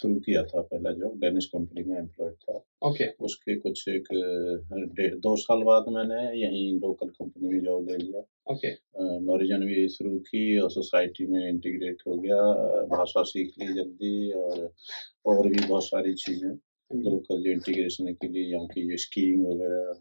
किया था, पहला जॉब डेनिश कंपनी में एम्प्लॉयड था। ओके। उसके कुछ एक 2 साल बाद मैंने यहीं लोकल कंपनी में जॉब ले लिया। ओके। नॉरिजन भी शुरू की और सोसाइटी में इंटीग्रेट हो गया। भाषा सीख ली जल्दी, और भी बहुत सारी चीज़ें लोकल जो इंटीग्रेशन के लिए, यहाँ की जो स्कीइंग वगैरह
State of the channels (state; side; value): inverted; both; correlation -1.00